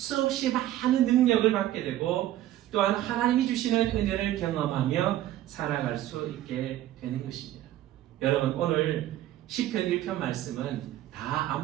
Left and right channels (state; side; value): quieter; left; 13.5 dB